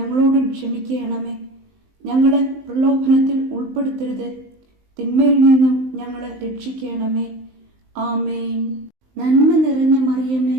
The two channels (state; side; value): late; left; 19 ms